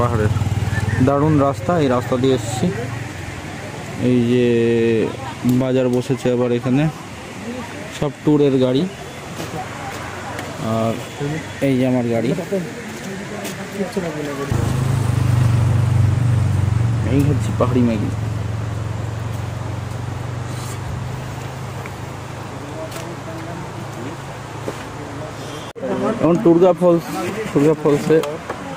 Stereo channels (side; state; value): both; identical; correlation 1.00